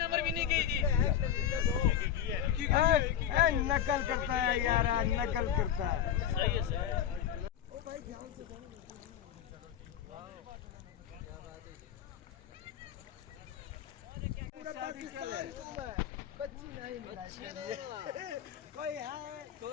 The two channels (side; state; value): right; quieter; 9.7 dB